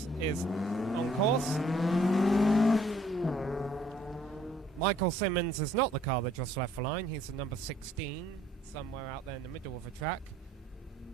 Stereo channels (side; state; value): both; normal; correlation 0.61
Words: is on course. Michael Simmons is not the car that just left the line. He's the number 16, somewhere out there in the middle of the track.